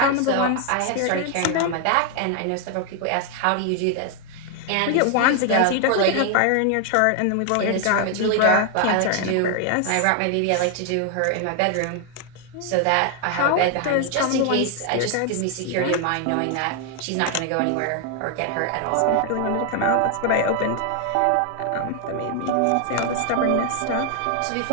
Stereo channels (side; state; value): both; different; correlation 0.00